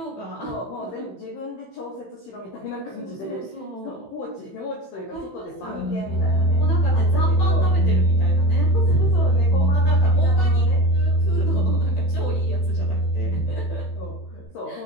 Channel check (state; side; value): late; right; 15 ms